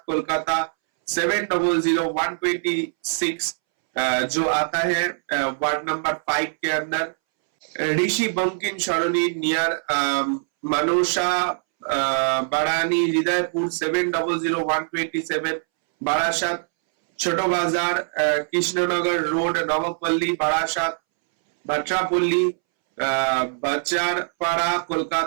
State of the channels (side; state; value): left; silent; 64 dB below the other